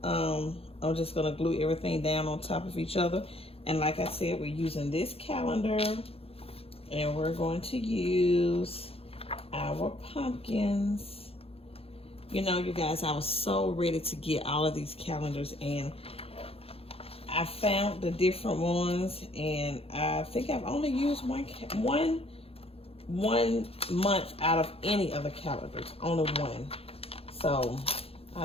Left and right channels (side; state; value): right; late; 0.28 ms